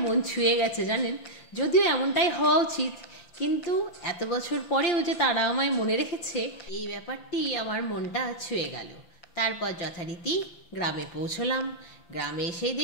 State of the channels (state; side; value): late; right; 5.8 ms